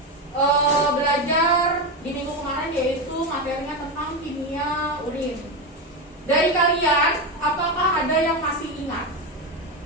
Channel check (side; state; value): both; normal; correlation 0.14